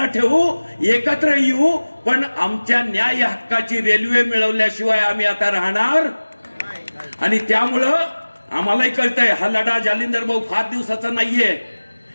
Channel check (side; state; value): both; inverted; correlation -1.00